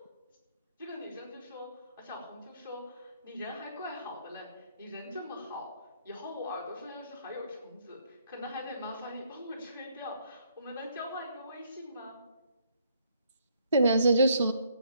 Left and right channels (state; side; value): inverted; both; correlation -0.68